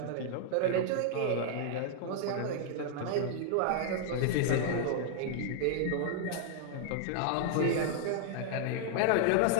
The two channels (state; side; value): different; both; correlation 0.00